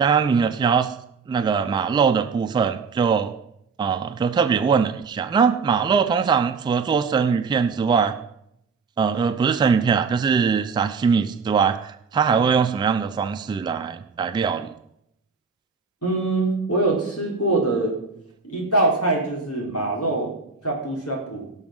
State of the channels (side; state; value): left; quieter; 5.1 dB